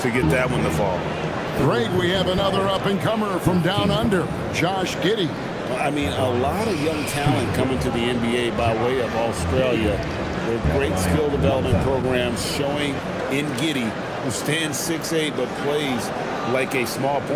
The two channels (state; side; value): identical; both; correlation 1.00